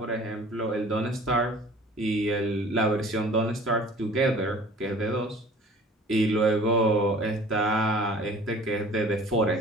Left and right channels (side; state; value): both; normal; correlation 0.47